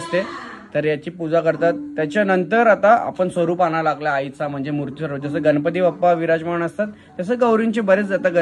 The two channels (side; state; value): both; identical; correlation 1.00